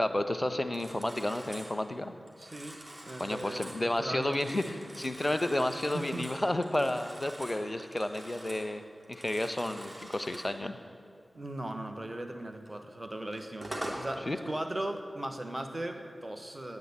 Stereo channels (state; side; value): normal; both; correlation 0.97